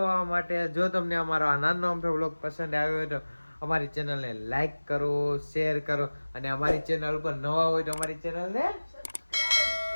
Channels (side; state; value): both; inverted; correlation -1.00